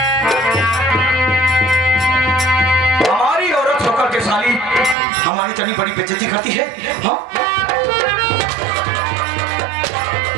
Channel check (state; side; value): drops out; left; at 5.0 s